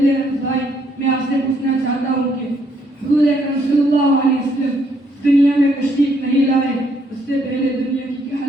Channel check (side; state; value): both; normal; correlation 0.71